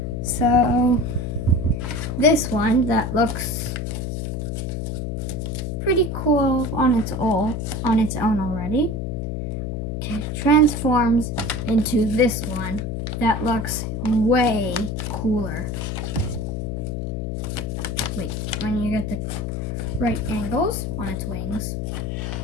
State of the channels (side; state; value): left; noise; hum, 3 dB below the sound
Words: So, this one that looks pretty cool on its own already transforms into this one that looks way cooler. Wait, when you get the right angles on its wings.